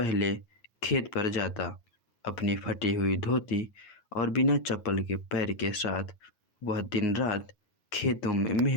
खेत पर जाता। अपनी फटी हुई धोती और बिना चप्पल के पैर के साथ वह दिन रात खेतों में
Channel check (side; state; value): right; late; 9.5 ms